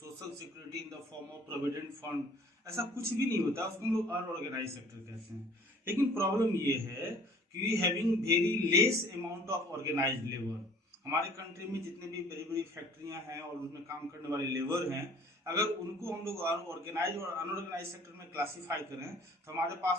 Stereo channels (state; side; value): normal; both; correlation 0.53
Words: security in the form of provident fund, ऐसा कुछ भी नहीं होता, उसको हम लोग अनऑर्गेनाइज सेक्टर कहते हैं। लेकिन प्रॉब्लम ये है कि we having very less amount of organised labour. हमारे कंट्री में जितने भी बड़ी बड़ी फैक्ट्रियां हैं और उसमें काम करने वाले लेबर हैं, अगर उनको हम लोग ऑर्गेनाइज और अनऑर्गेनाइज सेक्टर में क्लासीफाई करें तो हमारे